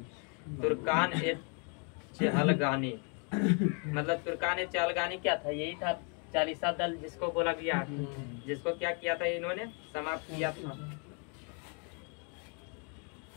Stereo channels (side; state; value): right; quieter; 37.8 dB